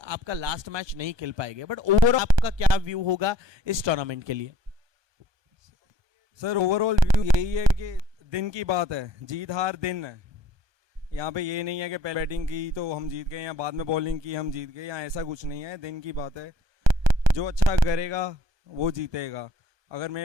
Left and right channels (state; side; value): late; left; 1.2 ms